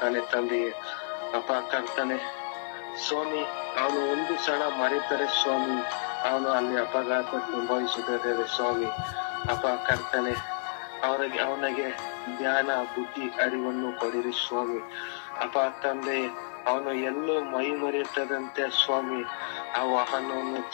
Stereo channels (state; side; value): silent; right; digital silence